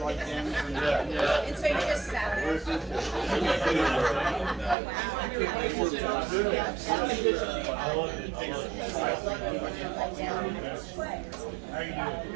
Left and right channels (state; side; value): drops out; left; at 4.8 s